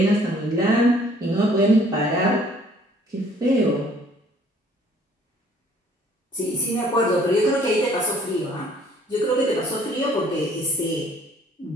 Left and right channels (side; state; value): both; normal; correlation 0.58